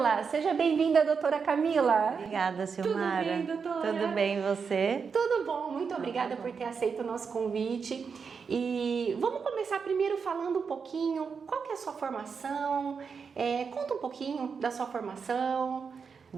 Seja bem-vinda, doutora Camila. Obrigada, Silmara. Tudo bem, doutora? Tudo bem, você? Tudo bom, muito obrigada por ter aceito o nosso convite. E vamos começar primeiro falando um pouquinho, qual que é a sua formação? Conta um pouquinho da sua formação.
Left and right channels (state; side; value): quieter; left; 5.8 dB